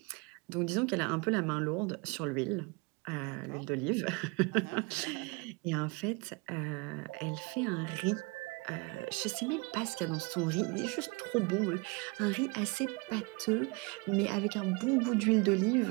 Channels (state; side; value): quieter; left; 28.7 dB